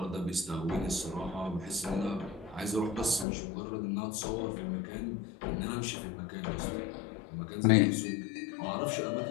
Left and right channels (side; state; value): right; drops out; at 3.2 s